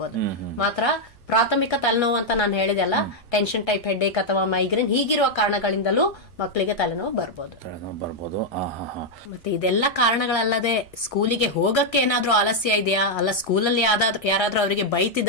ಮಾತ್ರ ಪ್ರಾಥಮಿಕ ತಲೆನೋವು ಅಂತ ನಾನು ಹೇಳಿದೆಲ್ಲ, ಟೆನ್ಷನ್ ಟೈಪ್ ಹೆಡ್ಏಕ್ ಅಥವಾ ಮೈಗ್ರೇನ್ ಹೀಗಿರುವ ಕಾರಣಗಳಿಂದಲೂ ಮಕ್ಕಳಿಗೆ ತಲೆನೋವು ಬರ್ಬೋದು. ಮತ್ತೆ ಇದೆಲ್ಲ ಕಾರಣಗಳಲ್ಲದೆ ಸ್ಕೂಲಿಗೆ ಹೋಗಕ್ಕೆ ಏನಾದ್ರೂ ಆಲಸ್ಯ ಇದೆಯಾ, ಅಲ್ಲ ಸ್ಕೂಲಲ್ಲಿ ಯಾರಾದ್ರೂ ಅವರಿಗೆ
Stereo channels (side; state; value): right; late; 1.3 ms